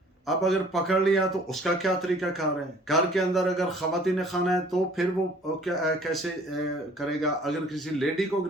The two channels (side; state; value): both; normal; correlation 0.53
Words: अब अगर पकड़ लिया तो उसका क्या तरीका कार है? घर के अंदर अगर खवातीन खाना है तो फिर वो क्या कैसे करेगा? अगर किसी लेडी को